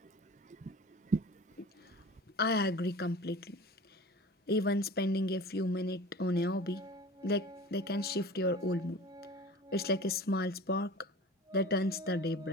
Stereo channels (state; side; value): normal; both; correlation 0.39